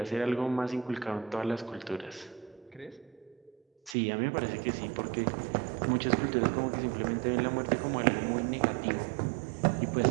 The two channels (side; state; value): left; drops out; at 4.0 s